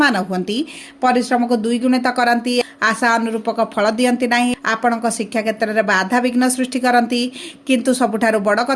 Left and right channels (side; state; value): both; identical; correlation 1.00